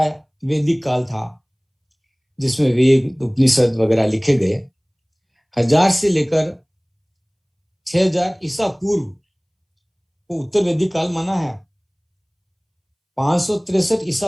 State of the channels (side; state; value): both; identical; correlation 1.00